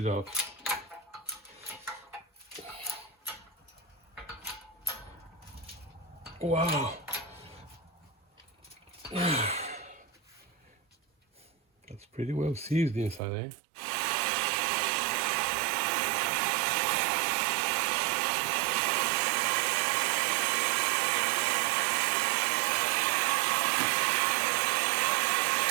out. Wow. That's pretty well seized inside, eh?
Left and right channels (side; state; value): left; drops out; at 13.2 s